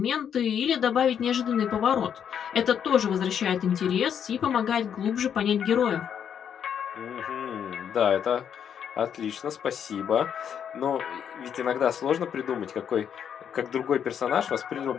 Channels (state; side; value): quieter; right; 8.4 dB